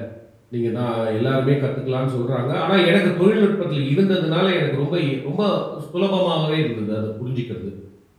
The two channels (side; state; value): both; identical; correlation 1.00